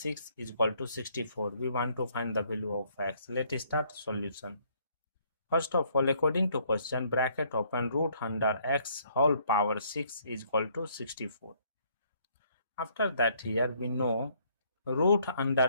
is equal to 64. We want to find the value of x. Let's start solution. First of all, according to question, bracket open, root under x whole power 6 is equal to 64. After that, here we know root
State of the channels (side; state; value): both; inverted; correlation -0.65